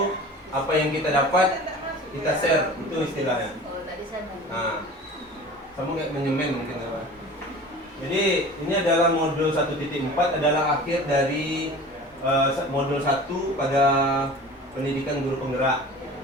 apa yang kita dapat kita share, itu istilahnya. Nah, kamu kayak menyemen mungkin apa? Jadi ini adalah modul 1.4 adalah akhir dari modul 1 pada pendidikan guru penggerak,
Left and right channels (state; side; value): normal; both; correlation 0.39